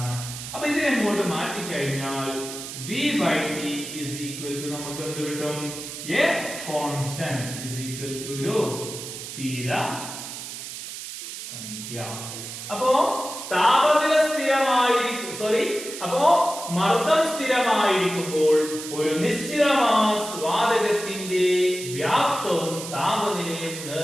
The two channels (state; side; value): noise; right; hiss, 9 dB below the sound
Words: അപ്പൊ ഇതിനെ ഇങ്ങോട്ട് മാറ്റി കഴിഞ്ഞാൽ V/T is equal to നമുക്ക് എന്ത് കിട്ടും? A constant is equal to ഒരു സ്ഥിര സംഖ്യ. അപ്പോ താപനില സ്ഥിരമായിരിക്കും, അപ്പോ മർദ്ദം സ്ഥിരമായിരിക്കുമ്പോൾ ഒരു നിശ്ചിത മാസ് വാതകത്തിന്റെ വ്യാപ്തവും താപനിലയും